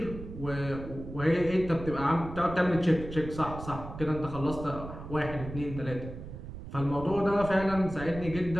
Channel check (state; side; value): noise; right; rumble, 11 dB below the sound